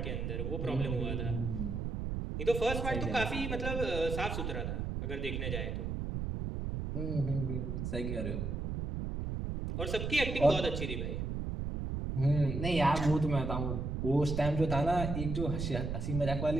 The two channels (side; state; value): right; noise; rumble, 3 dB below the sound